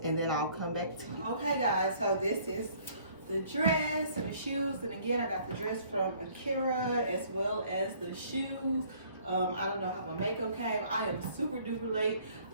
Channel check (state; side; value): inverted; both; correlation -0.59